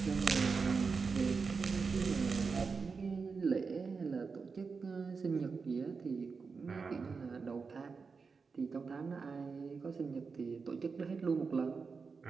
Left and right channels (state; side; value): quieter; left; 5.0 dB